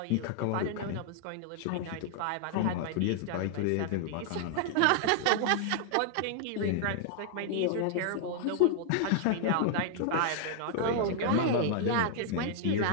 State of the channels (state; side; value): different; both; correlation 0.00